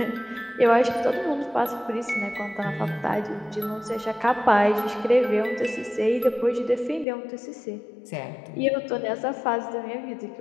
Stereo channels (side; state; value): right; drops out; at 7.1 s